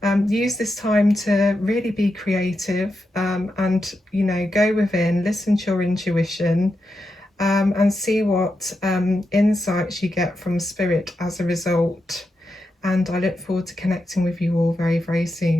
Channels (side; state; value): both; normal; correlation 0.87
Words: Use this time to really be creative, and, you know, go within, listen to your intuition, and see what insights you get from Spirit as a result. And I look forward to connecting with you all very, very